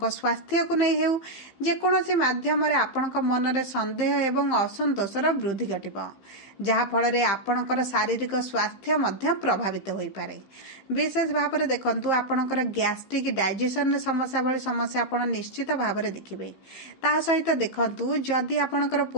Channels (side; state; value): right; late; 15 ms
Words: स्वास्थ्य को नहीं हेउ, जे कोनोसी माध्यम रे आपणक मन रे संदेह एवं असंतोषर वृद्धि घटिबो, जहा फल रे आपणकर शारीरिक स्वास्थ्य मध्य प्रभावित होई पारे। विशेष भाव रे देखंतु आपणकर गैस्ट्रिक डाइजेशन समस्या भली समस्या आपण निश्चित भाव रे देखिबे। ता सहित देखंतु जदि आपणकर